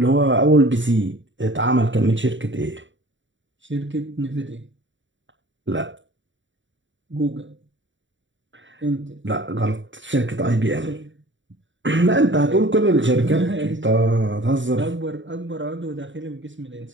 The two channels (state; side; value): late; left; 0.55 ms